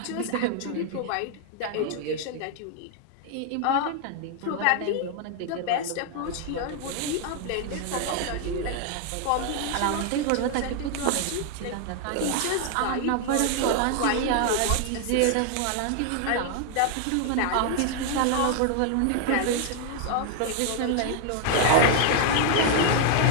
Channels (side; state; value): both; different; correlation 0.00